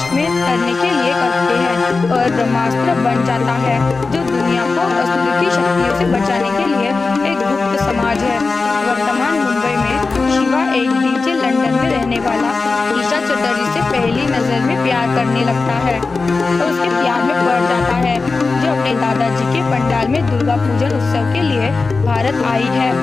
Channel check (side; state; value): right; quieter; 4.0 dB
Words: में करने के लिए करते हैं और ब्रह्मास्त्र बन जाता है, जो दुनिया को असुर की शक्तियों से बचाने के लिए एक गुप्त समाज है। वर्तमान मुंबई में शिवा एक डीजे लंदन में रहने वाला ईशा चटर्जी से पहली नजर में प्यार करने लगता है और उसके प्यार में पड़ जाता है, जो अपने दादाजी के पंडाल में दुर्गा पूजन उत्सव के लिए भारत आई है।